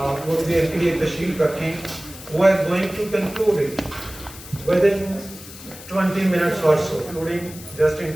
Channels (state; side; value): noise; left; hiss, 16 dB below the sound